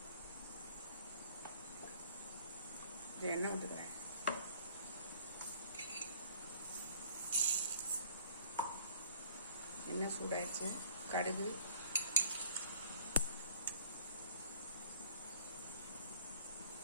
எண்ணெய் விட்டுக்கிறேன். எண்ணெய் சூடாயிடுச்சு. கடுகு,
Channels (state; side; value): inverted; both; correlation -0.54